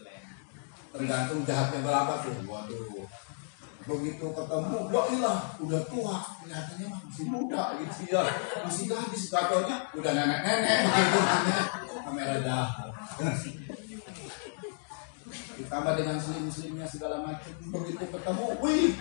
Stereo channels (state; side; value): silent; right; 56 dB below the other